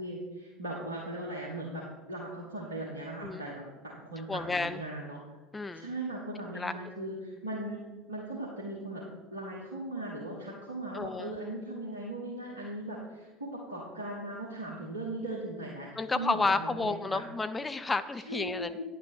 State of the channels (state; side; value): normal; both; correlation 0.43